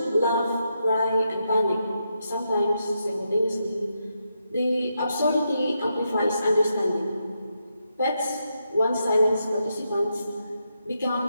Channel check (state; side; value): inverted; both; correlation -0.83